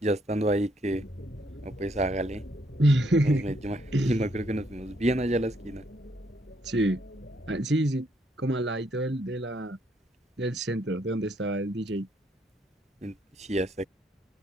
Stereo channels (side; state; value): both; normal; correlation 0.72